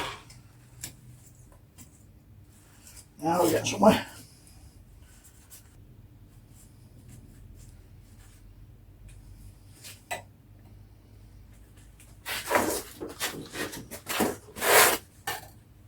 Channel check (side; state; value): both; identical; correlation 1.00